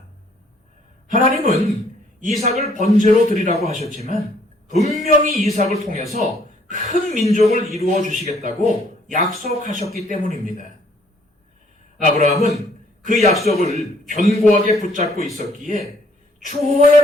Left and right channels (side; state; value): both; normal; correlation 0.63